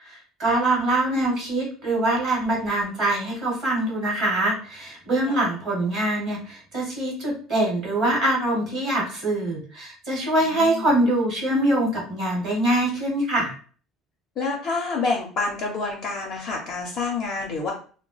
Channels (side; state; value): both; normal; correlation 0.51